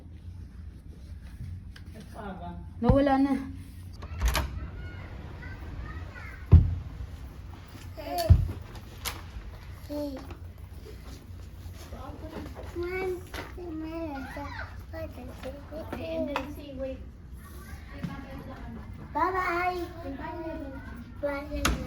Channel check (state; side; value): identical; both; correlation 1.00